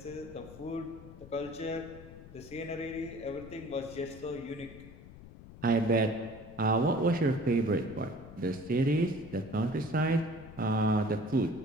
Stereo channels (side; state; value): left; noise; rumble, 17 dB below the sound